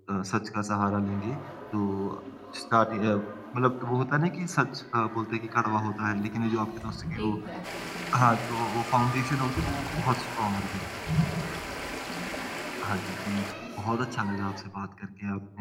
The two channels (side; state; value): both; identical; correlation 1.00